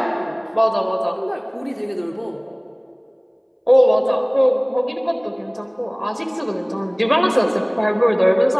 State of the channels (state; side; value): identical; both; correlation 1.00